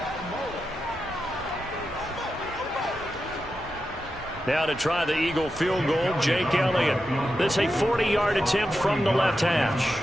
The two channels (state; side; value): normal; both; correlation 0.89